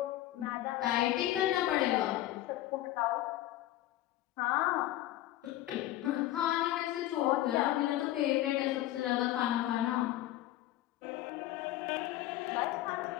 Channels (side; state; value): right; quieter; 14.8 dB